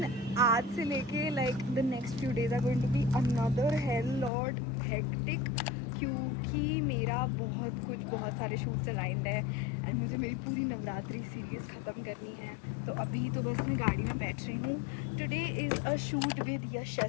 आज से लेके like the next few days are going to be another hell lot hectic, क्योंकि मेरा बहुत सारे शूट्स अलाइंड है एंड मुझे मेरी पूरी नवरात्रि सीरीज़ ख़त्म करनी है। तो अभी तो बस मैं गाड़ी में बैठ रही हूँ। Today is a shoot with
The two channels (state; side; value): drops out; right; at 4.3 s